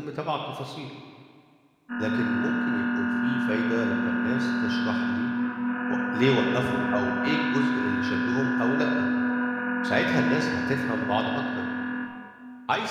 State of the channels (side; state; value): both; identical; correlation 1.00